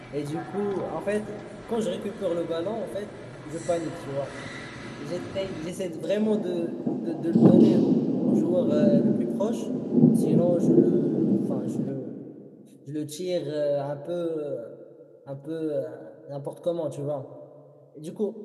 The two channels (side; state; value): both; identical; correlation 1.00